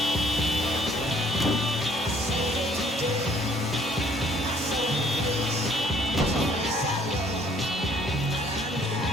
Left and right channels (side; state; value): both; normal; correlation 0.61